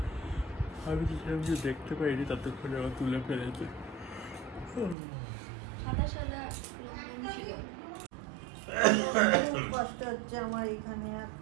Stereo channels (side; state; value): left; drops out; at 5.0 s